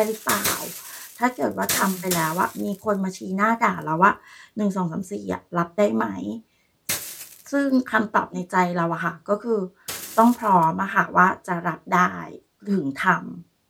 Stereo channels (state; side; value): identical; both; correlation 1.00